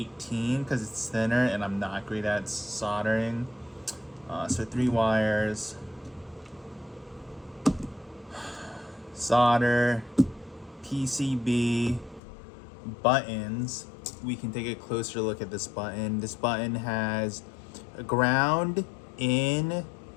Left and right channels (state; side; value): drops out; right; at 12.2 s